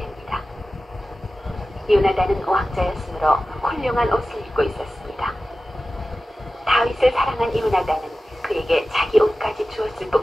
요나단은 왕자였으므로 훌륭한 옷을 입고 있었습니다. 다윗을 사랑한 요나단은 그에게 자기 옷까지 주었을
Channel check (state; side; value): normal; both; correlation 0.95